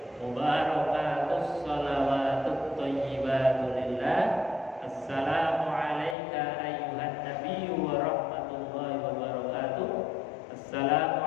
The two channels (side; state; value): right; drops out; at 6.2 s